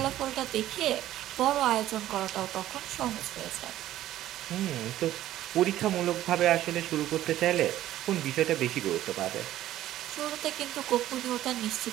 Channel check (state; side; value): quieter; left; 13.5 dB